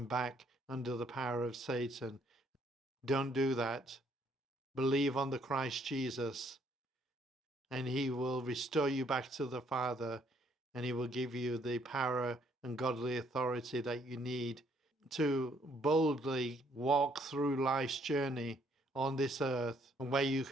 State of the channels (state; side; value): normal; both; correlation 0.67